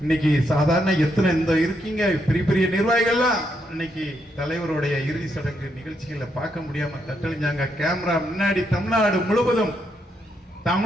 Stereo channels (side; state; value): both; normal; correlation 0.79